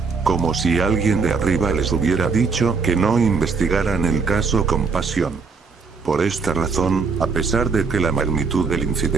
Como si alguien de arriba les hubiera dicho que no investigaran el caso con pasión. Por esta razón, a pesar de que la magnitud del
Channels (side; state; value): left; quieter; 4.9 dB